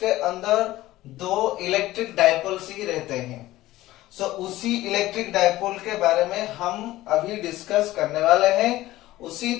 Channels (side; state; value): right; quieter; 16.4 dB